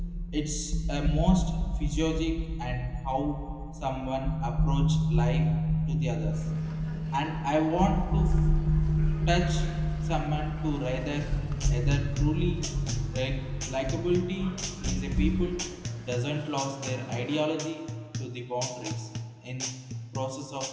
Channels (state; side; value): identical; both; correlation 1.00